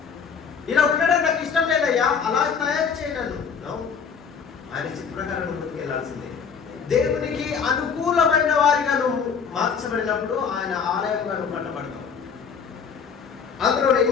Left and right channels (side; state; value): right; quieter; 6.5 dB